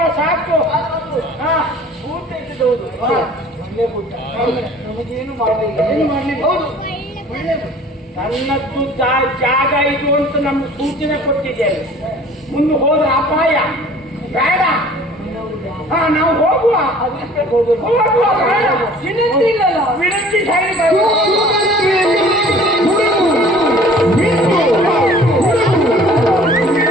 ಸಾಕು. ಊಟ ಇದ್ದೌದು ನಮಗೇನು ಮಾಡಲಿಲ್ಲ. ಏನು ಮಾಡಲಿಲ್ಲ. ಹೌದು, ನನ್ನದ್ದು ಜಾಗ ಇದು ಅಂತ ನಮ್ಗೆ ಸೂಚನೆ ಕೊಟ್ಟಿದ್ದೇವೆ. ಮುಂದೆ ಹೋದ್ರೆ ಅಪಾಯ ಬೇಡ. ನಾವು ಹೋಗುವ. ವಿನಂತಿ ಇಲ್ಲಲ್ಲ. ವಿನಂತಿ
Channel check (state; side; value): normal; both; correlation 0.50